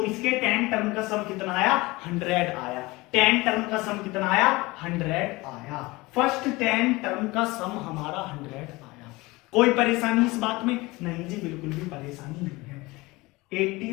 इसके 10 टर्म का सम कितना आया, 100 आया। 10 टर्म का सम कितना आया, 100 आया। फर्स्ट 10 टर्म का सम हमारा 100 आया। कोई परेशानी इस बात में नहीं जी, बिल्कुल भी परेशानी नहीं है।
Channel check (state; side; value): quieter; right; 22.1 dB